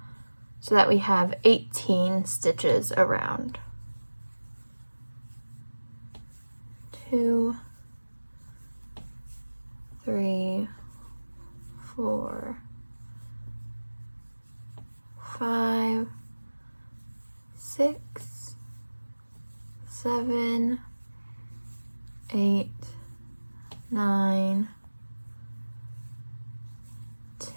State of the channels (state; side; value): inverted; both; correlation -1.00